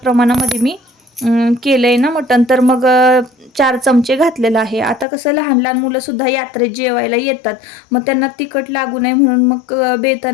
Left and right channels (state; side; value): drops out; right; at 5.1 s